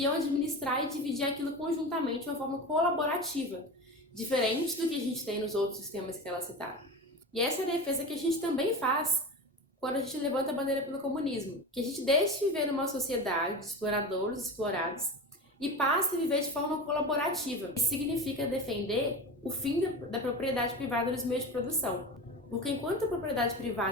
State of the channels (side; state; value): both; normal; correlation 0.27